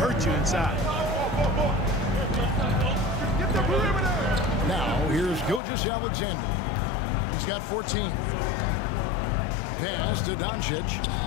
you inside. Now, here's Gilgeous-Alexander. He's got 14. Pass to Doncic.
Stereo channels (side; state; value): right; drops out; at 5.6 s